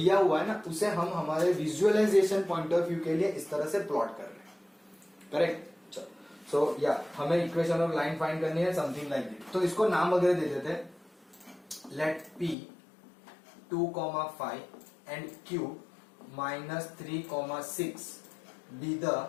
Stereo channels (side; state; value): right; drops out; at 12.6 s